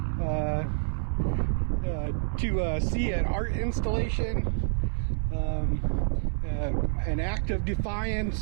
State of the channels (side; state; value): left; silent; 59 dB below the other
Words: to see an art installation, an act of